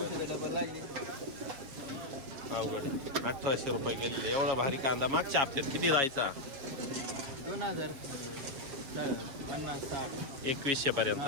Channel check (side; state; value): left; late; 7.2 ms